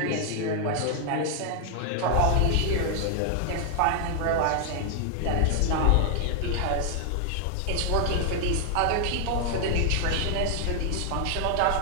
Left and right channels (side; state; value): both; different; correlation 0.00